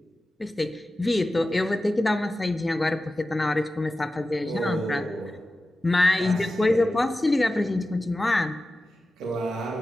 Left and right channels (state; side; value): normal; both; correlation 0.94